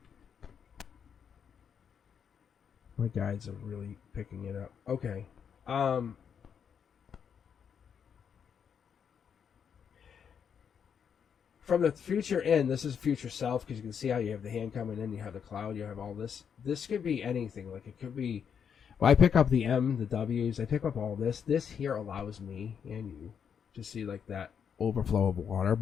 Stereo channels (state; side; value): quieter; right; 7.4 dB